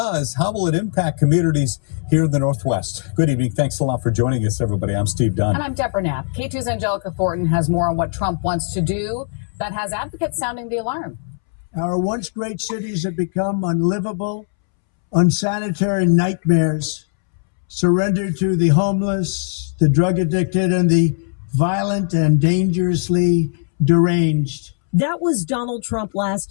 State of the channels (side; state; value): right; silent; 66 dB below the other